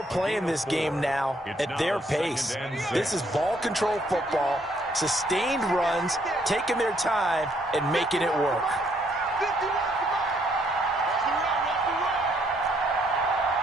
playing this game now at their pace. This is ball control football, sustained runs, taking their time, and making it work.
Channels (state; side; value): normal; both; correlation 0.69